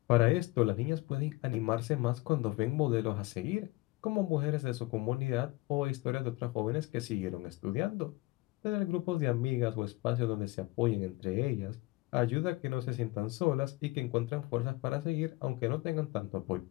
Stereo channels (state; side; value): quieter; right; 21.8 dB